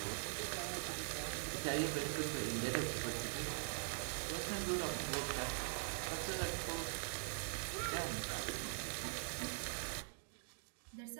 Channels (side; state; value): left; silent; digital silence